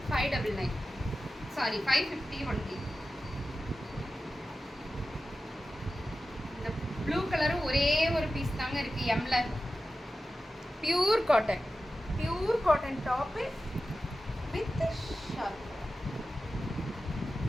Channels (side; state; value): both; normal; correlation 0.93